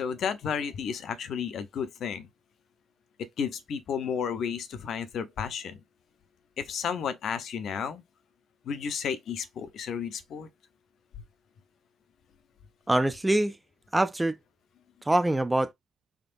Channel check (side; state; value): both; normal; correlation 0.83